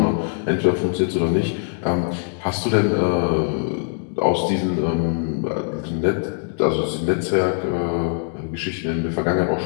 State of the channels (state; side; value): silent; right; digital silence